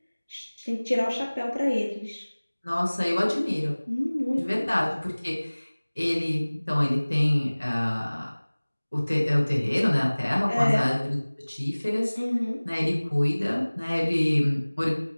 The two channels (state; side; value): inverted; both; correlation -1.00